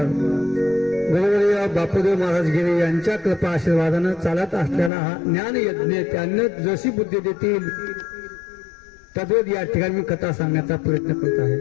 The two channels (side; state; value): right; drops out; at 4.9 s